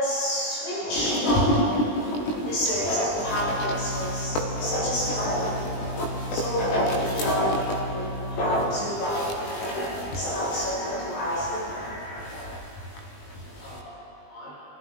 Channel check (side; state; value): right; late; 20 ms